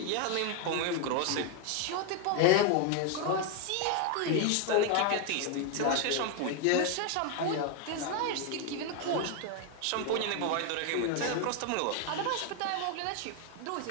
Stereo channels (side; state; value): both; different; correlation 0.01